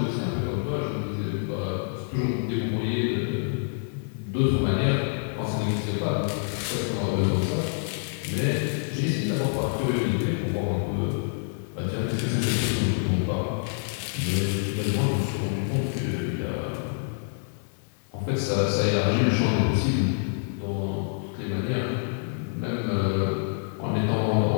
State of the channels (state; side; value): silent; right; digital silence